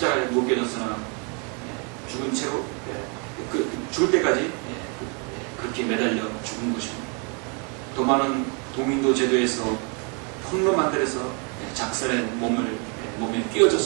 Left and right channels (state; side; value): quieter; left; 35.4 dB